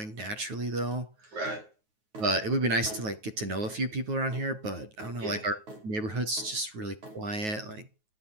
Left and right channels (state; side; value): late; left; 9.3 ms